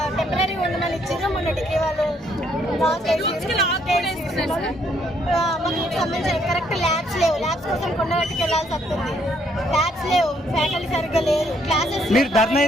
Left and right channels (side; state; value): both; normal; correlation 0.69